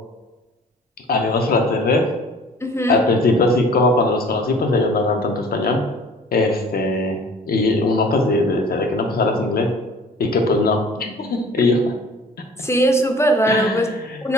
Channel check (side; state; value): both; normal; correlation 0.48